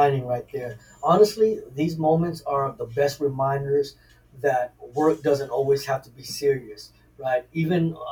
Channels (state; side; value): identical; both; correlation 1.00